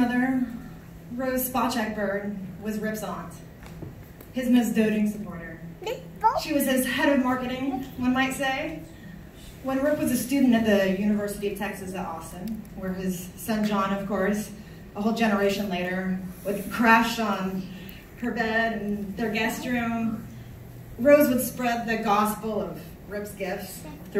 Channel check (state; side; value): identical; both; correlation 1.00